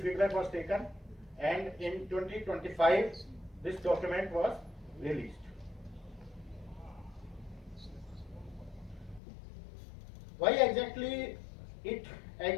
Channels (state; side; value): drops out; right; at 9.2 s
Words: feedback was taken and in 2025 this document was released. Why exactly it